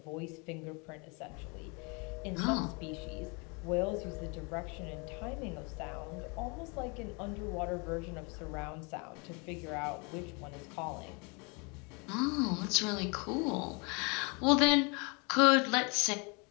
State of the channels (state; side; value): quieter; right; 31.5 dB